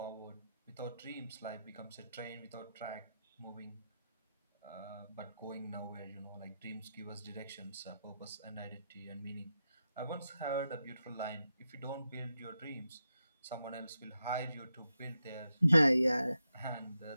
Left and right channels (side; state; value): both; inverted; correlation -0.87